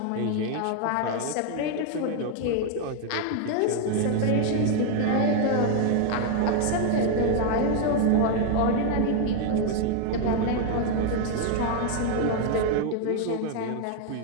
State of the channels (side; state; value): both; different; correlation 0.00